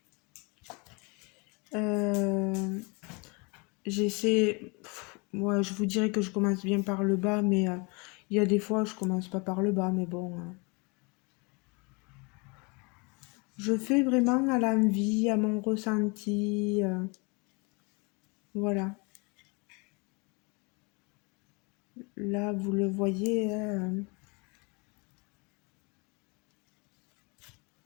J'essaie. Moi, je vous dirais que je commence bien par le bas, mais il y a des fois, je commence pas par le bas, mais bon. Je fais vraiment à l'envie, à mon ressenti. Voilà. Là, vous le voyez.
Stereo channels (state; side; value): quieter; right; 30.0 dB